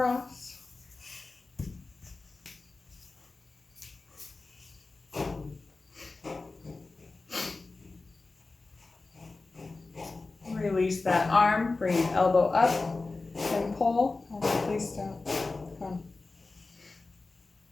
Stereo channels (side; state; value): right; quieter; 3.6 dB